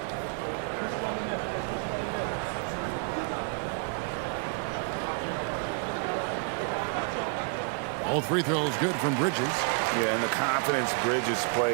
Both free throws good from Bridges. Yeah, and the confidence Bridges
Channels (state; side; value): quieter; left; 39.1 dB